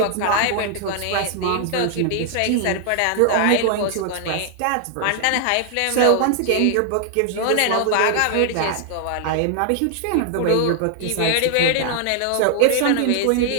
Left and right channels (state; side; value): different; both; correlation 0.00